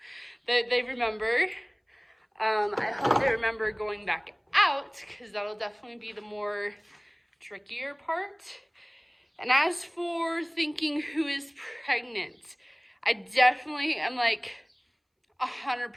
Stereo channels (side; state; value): both; identical; correlation 1.00